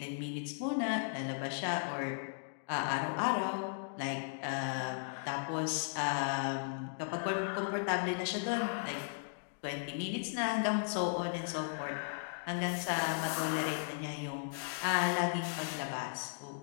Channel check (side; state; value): right; silent; digital silence